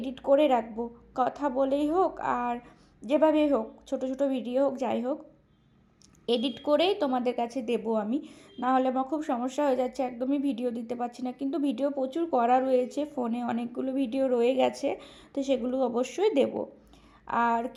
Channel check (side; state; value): both; identical; correlation 1.00